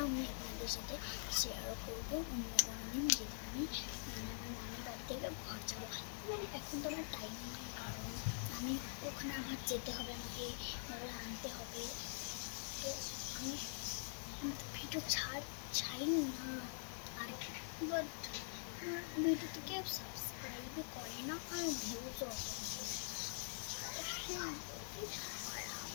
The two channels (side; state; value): right; silent; digital silence